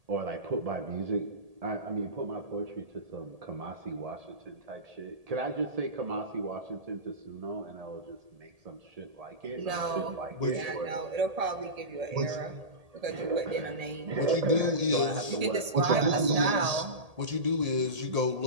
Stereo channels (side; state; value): left; late; 1.8 ms